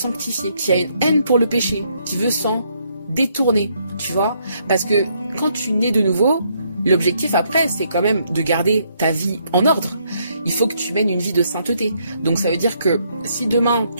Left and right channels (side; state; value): both; inverted; correlation -0.72